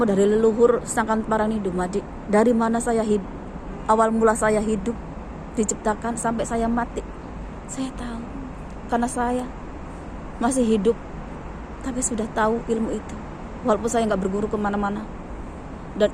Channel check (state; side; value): identical; both; correlation 1.00